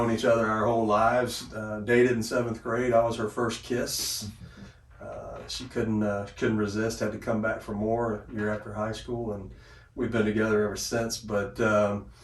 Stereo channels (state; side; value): identical; both; correlation 1.00